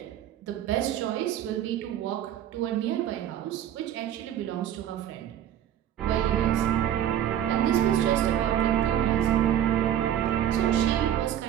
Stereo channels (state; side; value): quieter; left; 10.9 dB